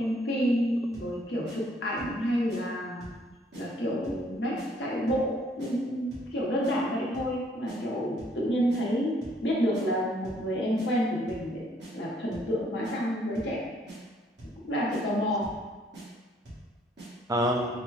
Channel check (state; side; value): normal; both; correlation 0.65